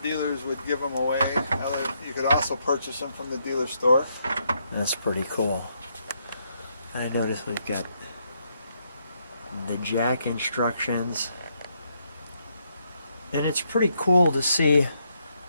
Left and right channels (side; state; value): both; inverted; correlation -0.76